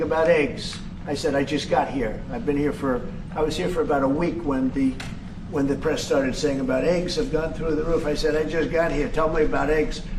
about eggs. I said, I just got here. I was here for about a week when the press started saying about eggs have gone through the roof. I said, I just got here. Tell me about eggs.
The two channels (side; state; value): both; identical; correlation 1.00